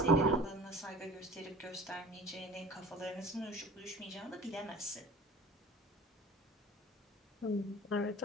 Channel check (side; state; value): both; normal; correlation 0.42